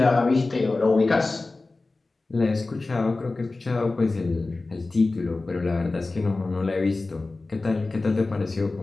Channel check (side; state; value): right; quieter; 3.4 dB